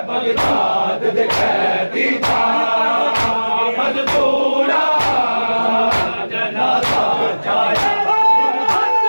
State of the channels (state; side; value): inverted; both; correlation -1.00